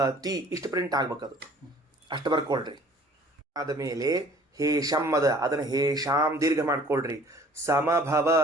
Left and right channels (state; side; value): normal; both; correlation 0.52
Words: ಇಷ್ಟು ಪ್ರಿಂಟ್ ಆಗ್ಬೇಕದು, ಅಷ್ಟು ಬರ್ಕೊಳ್ರಿ. ಆದಮೇಲೆ ಹೇಷಂ ಅದ, ಅದನ್ನು ಹೇಷಾಂ ದೀರ್ಘ ಮಾಡ್ಕೊಳ್ರಿ.